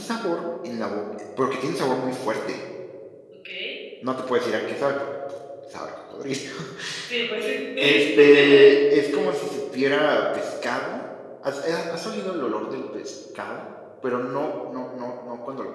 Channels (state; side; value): identical; both; correlation 1.00